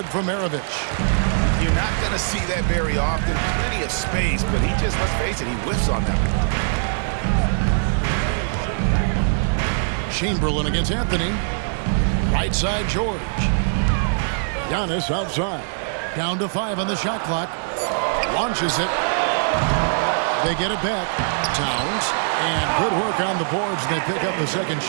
from Maravich. You're not going to see that very often. Plenty of space, but he just, let's face it, he whiffs on that one. Chamberlain against Anthony. Right side, George. Giannis outside. Down to 5 on the shot clock. Launches it. They get it back. Towns. And good work on the boards. They pick up the second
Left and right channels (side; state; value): left; silent; digital silence